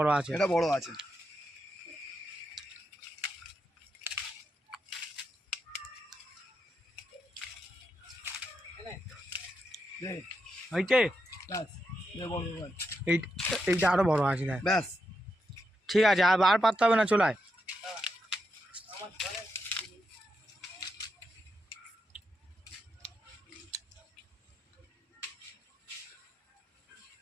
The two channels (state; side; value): normal; both; correlation 0.84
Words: আছে, এটা বড় আছে। এইটা আরো বড় আছে। ব্যাস ঠিক আছে, আর পারতে হবে না, চলায়।